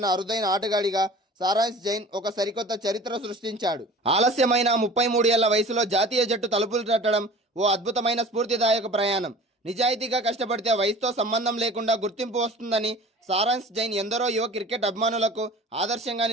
అరుదైన ఆటగాడిగా సారాంశ్ జైన్ ఒక సరికొత్త చరిత్ర సృష్టించాడు. ఆలస్యమైన 33 ఏళ్ల వయసులో జాతీయ జట్టు తలుపులు తట్టడం ఓ అద్భుతమైన స్ఫూర్తిదాయక ప్రయాణం. నిజాయితీగా కష్టపడితే వయసుతో సంబంధం లేకుండా గుర్తింపు వస్తుందని సారాంశ్ జైన్ ఎందరో యువ క్రికెట్ అభిమానులకు ఆదర్శంగా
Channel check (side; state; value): both; normal; correlation 0.42